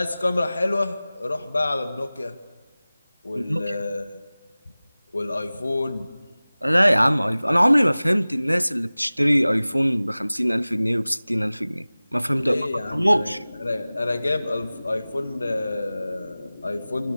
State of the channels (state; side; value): inverted; both; correlation -0.98